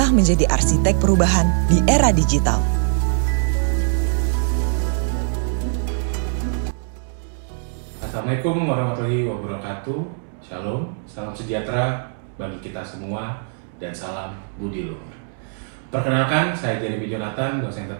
menjadi arsitek perubahan di era digital. Assalamualaikum warahmatullahi wabarakatuh. Shalom, salam sejahtera bagi kita semua dan salam budi luhur. Perkenalkan, saya Jeremy Jonathan, dosen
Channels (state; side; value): silent; left; 64 dB below the other